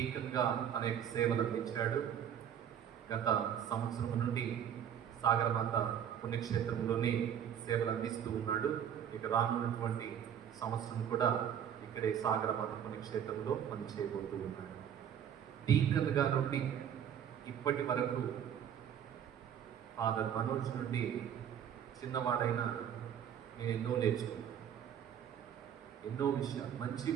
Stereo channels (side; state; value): left; quieter; 9.1 dB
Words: అనేక సేవలు అందించాడు. గత సంవత్సరం నుండి సాగరమాత పుణ్యక్షేత్రంలోనే సేవలు అందిస్తూ ఉన్నాడు. ఇక రానున్నటువంటి సంవత్సరం కూడా ఇక్కడే సాగరమాత పుణ్యక్షేత్రంలో పనిచేయబోతూ ఉన్నాడు. డీకన్గా నుండి ఇప్పటి వరకు ఫాదర్ మనోజ్ నుండి చిన్నవాడైనా నేను ఎన్నో నేర్చుకున్నాను. ఎన్నో విషయాలు, మంచి